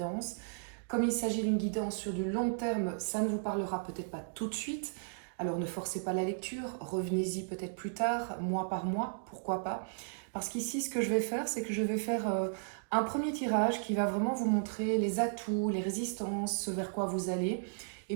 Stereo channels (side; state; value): left; silent; digital silence